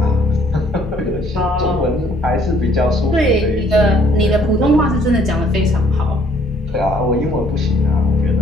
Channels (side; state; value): both; normal; correlation 0.62